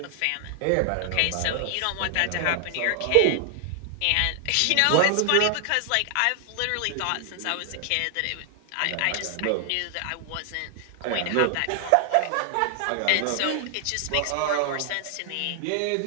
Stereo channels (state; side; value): different; both; correlation 0.00